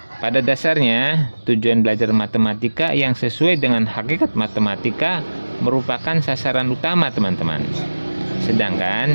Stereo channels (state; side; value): inverted; both; correlation -1.00